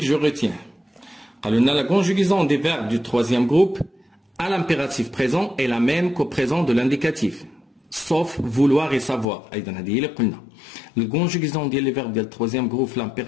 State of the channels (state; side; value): drops out; right; at 9.2 s